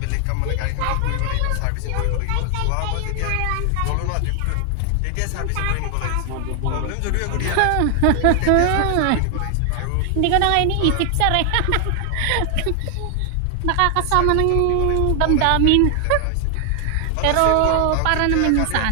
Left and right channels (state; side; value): different; both; correlation 0.00